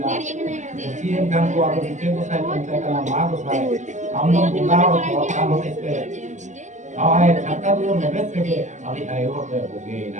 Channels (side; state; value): left; late; 0.34 ms